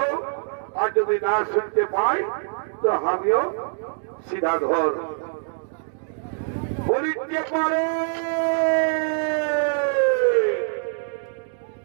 আর যদি না শুনতে পাই তো আমিও সিধা ঘর। বলিতে পারে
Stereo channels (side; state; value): left; silent; digital silence